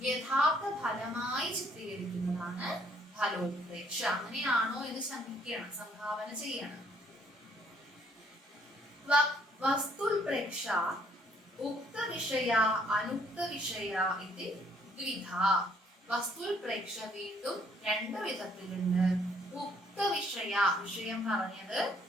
യഥാർത്ഥ ഫലമായി ചിത്രീകരിക്കുന്നതാണ് ഫലോൽപ്രേക്ഷ. അങ്ങനെയാണോ എന്ന് ശങ്കിക്കണം, സംഭാവന ചെയ്യണം. വസ്തുൽപ്രേക്ഷ ഉക്ത വിഷയ അനുക്ത വിഷയ ഇത് ദ്വിധ. വസ്തുൽപ്രേക്ഷ വീണ്ടും 2 വിധത്തിലുണ്ട്. ഉക്ത വിഷയ, വിഷയം പറഞ്ഞത്,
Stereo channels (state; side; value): normal; both; correlation 0.65